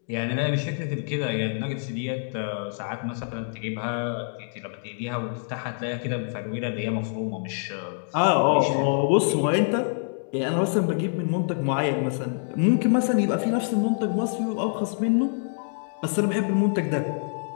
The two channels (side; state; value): right; silent; digital silence